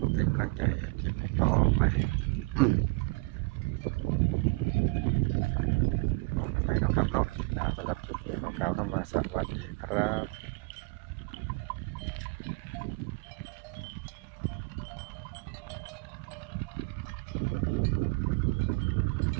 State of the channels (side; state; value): left; quieter; 28.3 dB